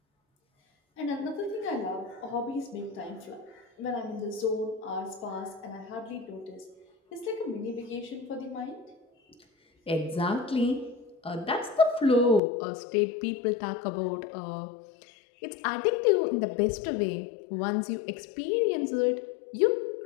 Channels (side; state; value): right; drops out; at 12.4 s